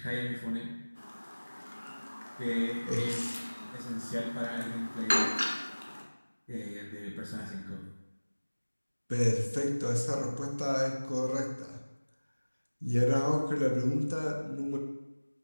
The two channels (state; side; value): inverted; both; correlation -1.00